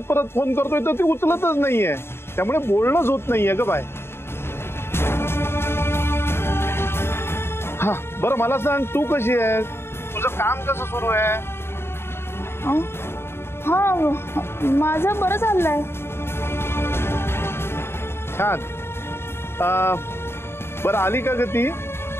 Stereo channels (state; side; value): late; right; 0.12 ms